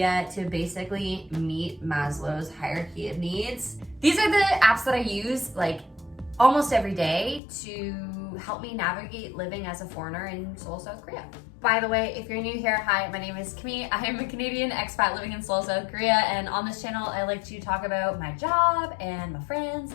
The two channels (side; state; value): right; drops out; at 7.4 s